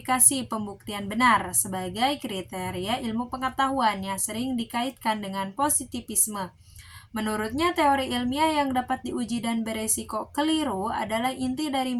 pembuktian benar sebagai kriteria ilmu pengetahuan yang sering dikaitkan dengan positivisme. Menurutnya, teori ilmiah yang dapat diuji dan beresiko keliru adalah inti dari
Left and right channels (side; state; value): both; identical; correlation 1.00